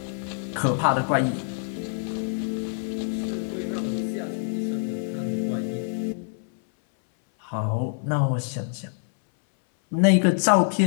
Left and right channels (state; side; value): silent; right; 61 dB below the other